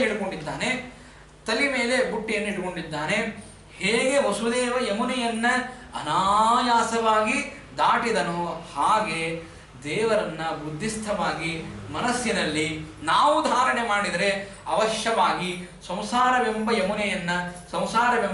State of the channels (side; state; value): both; identical; correlation 1.00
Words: ಇಟ್ಕೊಂಡಿದ್ದಾನೆ, ತಲೆ ಮೇಲೆ ಬುಟ್ಟಿಯನ್ನು ಇಟ್ಕೊಂಡಿದ್ದಾನೆ, ಹೇಗೆ ವಸುದೇವ ಯಮುನೆಯನ್ನ ಅನಾಯಾಸವಾಗಿ ದಾಟಿದನೋ ಹಾಗೆ ದೇವರನ್ನ ಬುದ್ಧಿಸ್ಥವಾಗಿ ಮನಸ್ಸಿನಲ್ಲಿ ನಾವು ಧಾರಣೆ ಮಾಡಿದರೆ ಅವಶ್ಯವಾಗಿ ಸಂಸಾರವೆಂಬ ಯಮುನೆಯನ್ನ,